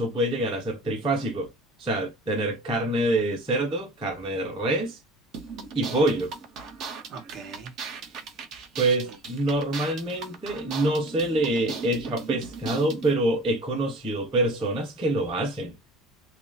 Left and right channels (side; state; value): both; normal; correlation 0.39